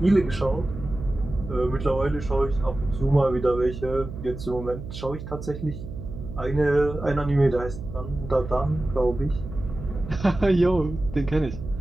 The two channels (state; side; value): noise; right; hum, 10 dB below the sound